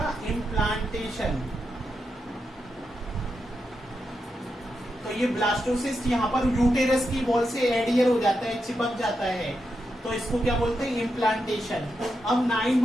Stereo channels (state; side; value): normal; both; correlation 0.86